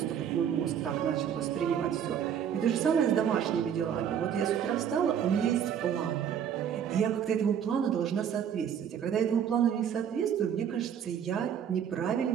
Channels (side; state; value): left; quieter; 8.6 dB